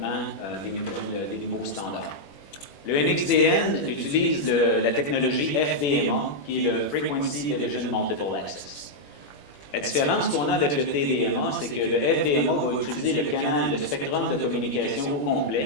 des nouveaux standards. Le NXDN utilise la technologie FDMA, qui est le Frequency Division Multiple Access. La différence qu'on a avec le TDMA, c'est que le FDMA va utiliser le spectrum de communication au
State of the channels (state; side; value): late; right; 21 ms